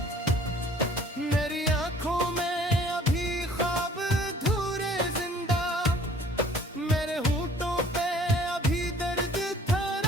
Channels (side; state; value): both; normal; correlation 0.54